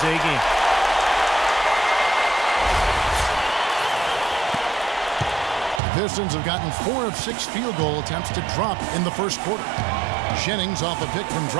A game. Pistons have gotten 4 of 6 field goal attempts to drop in the first quarter. Jennings off a pick from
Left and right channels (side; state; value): left; drops out; at 5.8 s